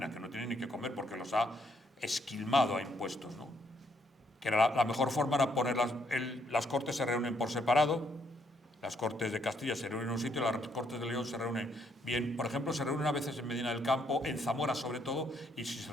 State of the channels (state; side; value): normal; both; correlation 0.72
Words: que no tienen ni que comer porque los ha esquilmado a impuestos, ¿no? Que era la mejor forma era las cortes se reúnen por separado. Las Cortes de Castilla se reúnen en un sitio, las Cortes de León se reúnen bien. Por ejemplo, se reúnen a veces en Medina del Campo, en Zamora sobre todo, y si se